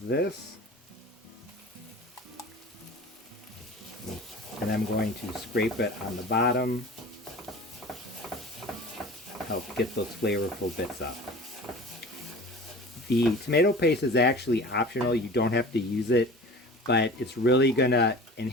this. And I'm going to scrape it on the bottom. Help get those flavorful bits up. The tomato paste is actually optional. You don't have to use it, but it's really going to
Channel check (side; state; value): both; normal; correlation 0.39